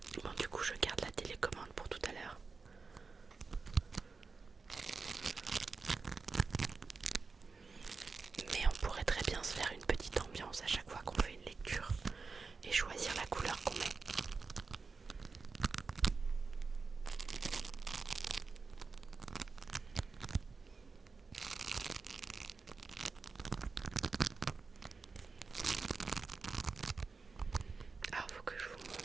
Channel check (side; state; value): left; quieter; 4.5 dB